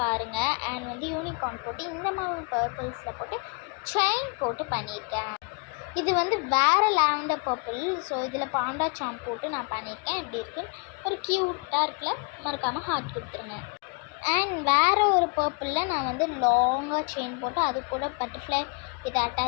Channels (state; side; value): quieter; right; 34.8 dB